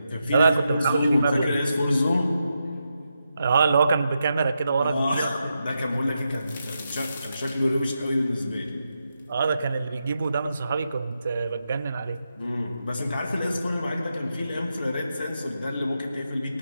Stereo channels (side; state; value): both; inverted; correlation -0.86